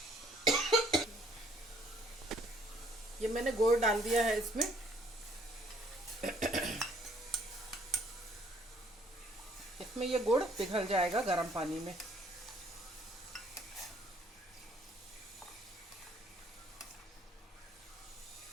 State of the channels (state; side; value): normal; both; correlation 0.63